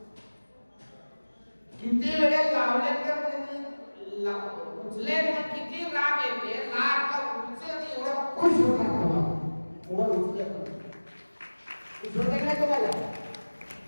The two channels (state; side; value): inverted; both; correlation -1.00